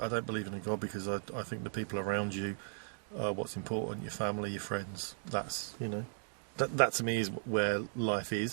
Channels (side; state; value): left; silent; digital silence